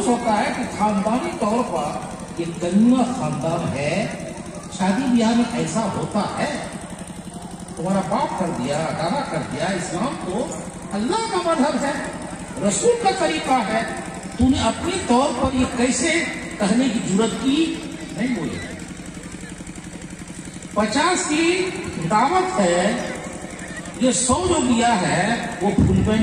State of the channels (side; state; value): both; identical; correlation 1.00